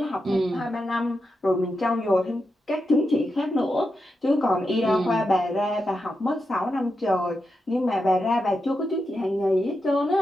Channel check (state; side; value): normal; both; correlation 0.87